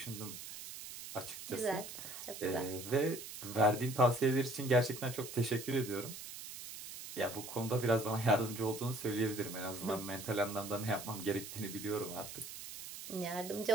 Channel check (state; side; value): noise; right; hiss, 11 dB below the sound